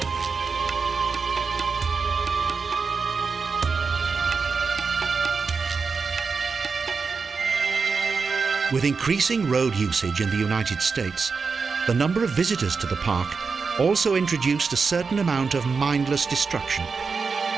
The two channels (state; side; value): quieter; left; 5.0 dB